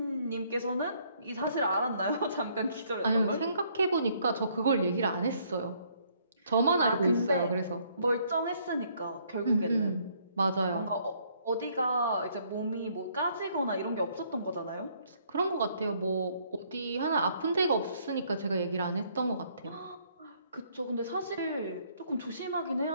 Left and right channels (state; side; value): inverted; both; correlation -0.66